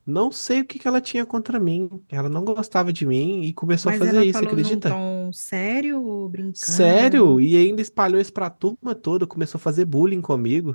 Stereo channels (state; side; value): inverted; both; correlation -1.00